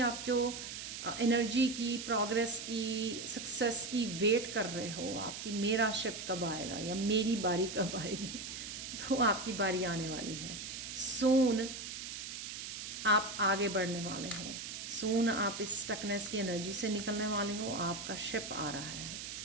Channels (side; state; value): right; noise; hiss, 7 dB below the sound